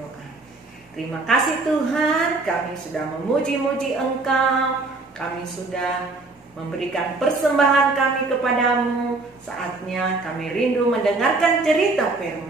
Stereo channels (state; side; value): quieter; left; 3.4 dB